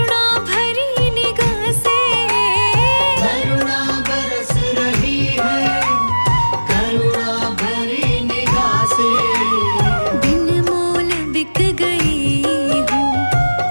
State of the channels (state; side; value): inverted; both; correlation -1.00